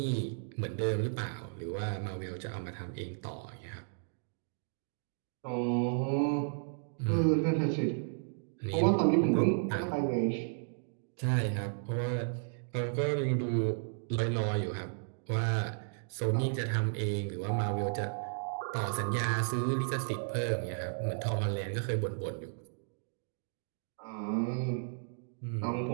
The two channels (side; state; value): left; silent; digital silence